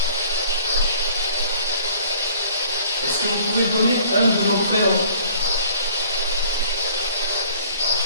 Est-ce que vous pouvez donner un de vos prénoms?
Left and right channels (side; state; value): both; inverted; correlation -0.54